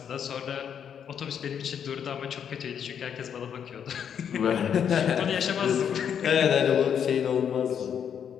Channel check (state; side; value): quieter; right; 8.2 dB